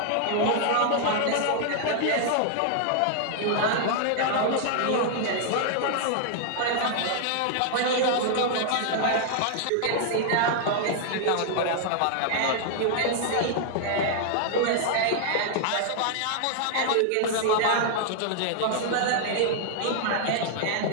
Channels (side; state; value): both; different; correlation -0.01